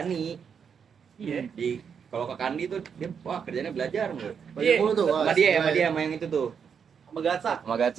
Iya. Di kalau ke Kandi tuh dia wah kerjanya belajar mulu. Banyak Iya. mulu tuh. Sama dia sama yang itu tuh. Sama Gatsa. Sama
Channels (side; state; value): left; quieter; 6.9 dB